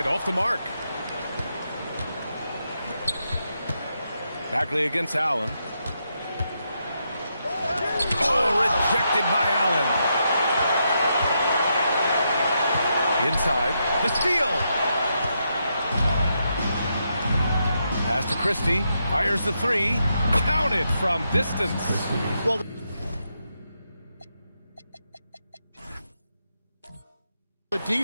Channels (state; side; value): inverted; both; correlation -0.82